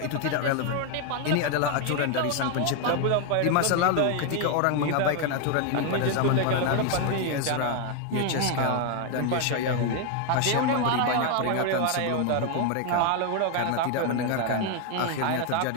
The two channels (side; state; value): both; different; correlation 0.01